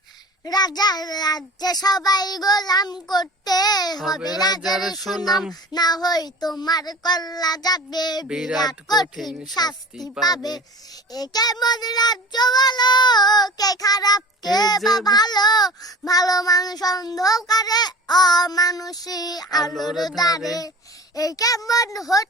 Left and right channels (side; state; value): both; normal; correlation 0.39